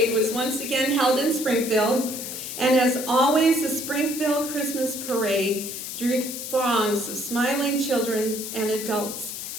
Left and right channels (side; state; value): left; noise; hiss, 7 dB below the sound